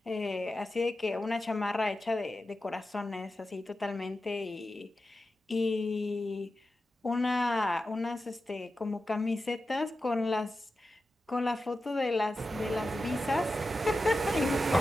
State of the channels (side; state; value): both; normal; correlation 0.92